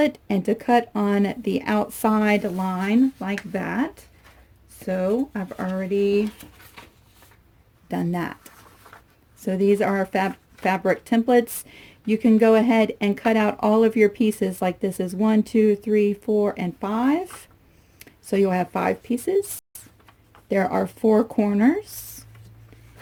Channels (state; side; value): identical; both; correlation 1.00